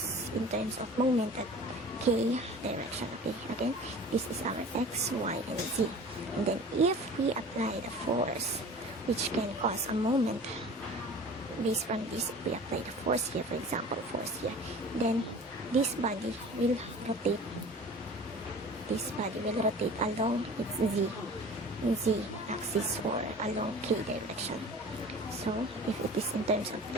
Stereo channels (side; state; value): both; normal; correlation 0.41